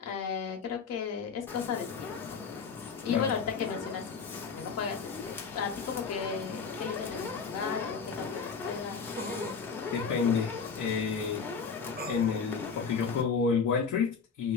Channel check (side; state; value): right; quieter; 5.6 dB